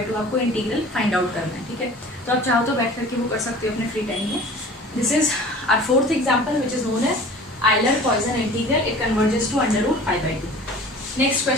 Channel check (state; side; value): normal; both; correlation 0.43